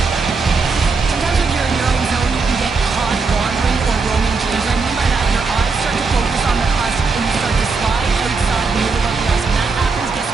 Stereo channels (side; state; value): left; quieter; 4.5 dB